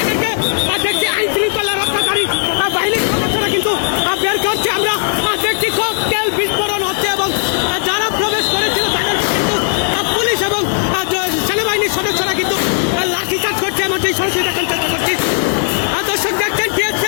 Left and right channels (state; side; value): silent; right; 69 dB below the other